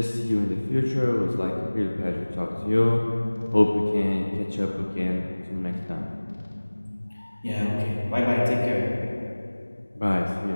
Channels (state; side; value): inverted; both; correlation -1.00